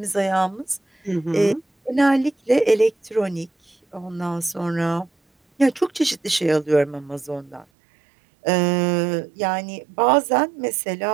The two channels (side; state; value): left; drops out; at 7.7 s